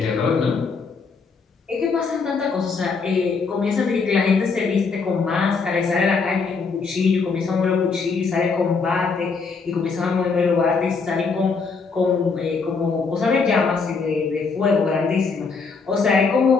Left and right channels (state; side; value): quieter; right; 4.8 dB